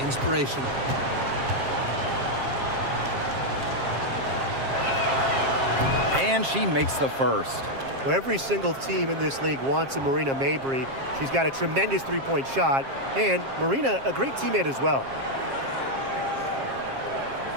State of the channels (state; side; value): late; left; 7.4 ms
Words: inspirational. And she makes the first. Well, every single team in this league wants a Marina Mabry. She's got a tremendous three-point shot, and Marina, a great teammate as well.